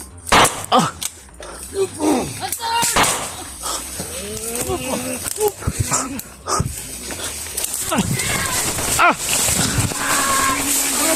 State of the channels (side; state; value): both; identical; correlation 1.00